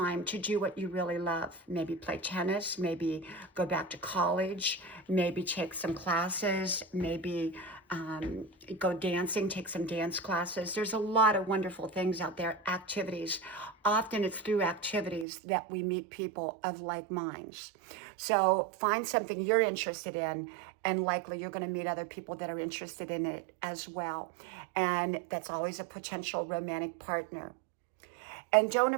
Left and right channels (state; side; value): drops out; left; at 15.2 s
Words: to do what you really love. Maybe play tennis, maybe go back to college, maybe take some classes, maybe go dancing, take some dance classes. There's a lot of wonderful things out there, activities. Often it's through activities that we meet people of like minds. So find something you're interested in, and likely you're going to meet other people that are interested in it as well. And that's always a potential romantic partner. And don't